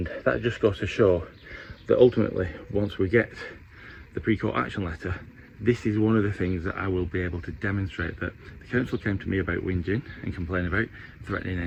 that just goes to show that ultimately, once we get the pre-court action letter, this is one of the things that I will be able to demonstrate, that the council came to me about whinging and complaining about, threatening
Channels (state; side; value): identical; both; correlation 1.00